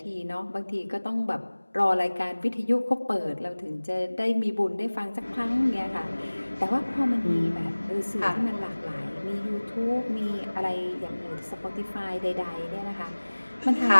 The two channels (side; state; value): both; inverted; correlation -1.00